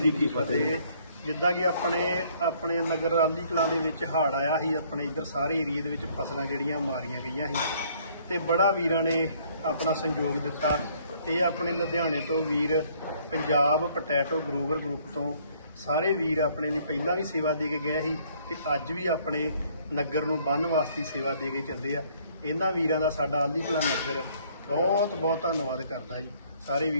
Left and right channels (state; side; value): inverted; both; correlation -0.62